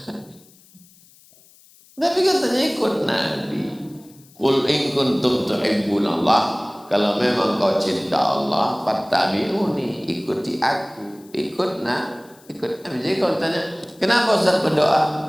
Tapi katanya ikut Nabi. Qul in kuntum tuhibbunallah, kalau memang kau cinta Allah, fattabi'uni, ikuti aku. Ikut Nabi. Jadi kalau tanya, kenapa Ustaz berdoa?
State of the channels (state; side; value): noise; left; hiss, 27 dB below the sound